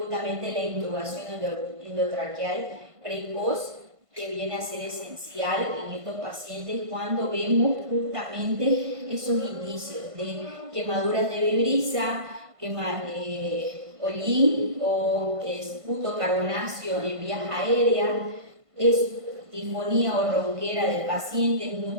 la intubación endotraqueal precoz, que viene a ser esencial en estos pacientes cuando vemos justamente esos indicios de quemaduras de vibrisa, hollín o esputo carbonáceo en vías aéreas, disfonía o ronquera del paciente,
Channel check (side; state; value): left; late; 1.5 ms